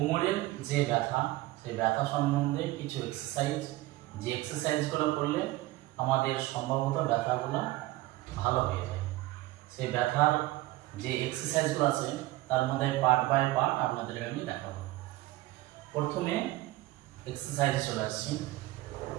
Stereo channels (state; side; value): quieter; left; 18.2 dB